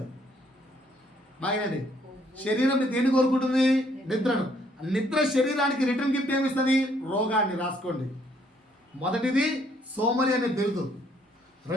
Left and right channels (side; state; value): both; normal; correlation 0.67